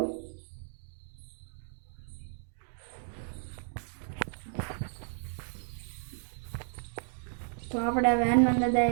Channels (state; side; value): silent; left; digital silence